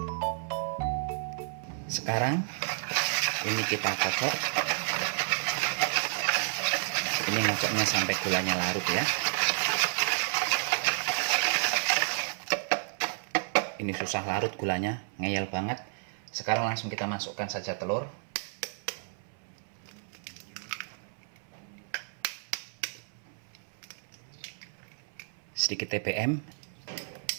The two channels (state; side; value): silent; left; 57 dB below the other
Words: Sekarang ini kita kocok. Ini ngocoknya sampai gulanya larut ya. Ini susah larut gulanya, ngeyel banget. Sekarang langsung kita masukkan saja telur. Sedikit TBM,